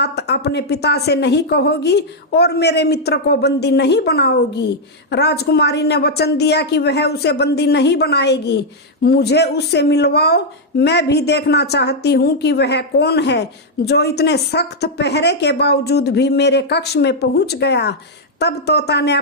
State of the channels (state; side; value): normal; both; correlation -0.03